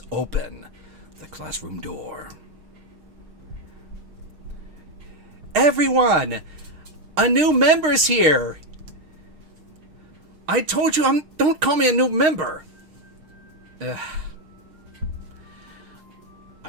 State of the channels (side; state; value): left; late; 6.5 ms